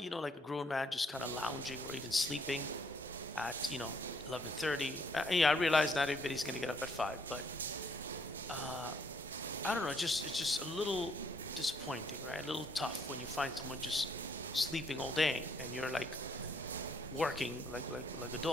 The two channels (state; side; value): normal; both; correlation 0.68